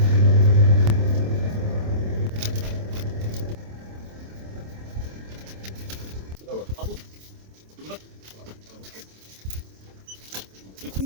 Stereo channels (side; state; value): left; late; 27 ms